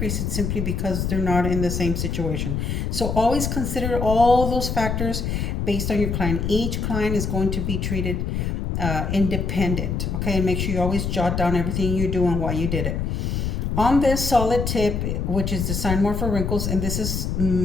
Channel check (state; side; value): noise; left; rumble, 1 dB below the sound